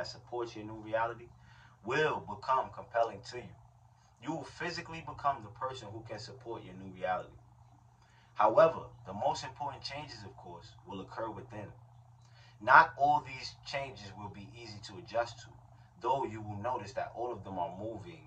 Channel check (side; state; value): both; identical; correlation 1.00